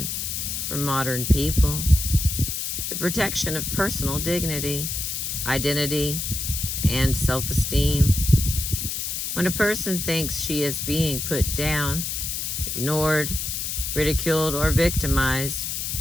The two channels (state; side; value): noise; left; hiss, 3 dB below the sound